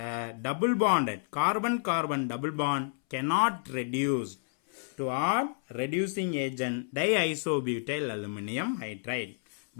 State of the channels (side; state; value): right; silent; 58 dB below the other